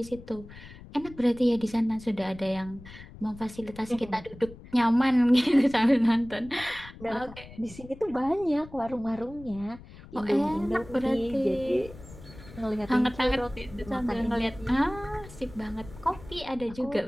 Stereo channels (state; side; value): noise; left; rumble, 17 dB below the sound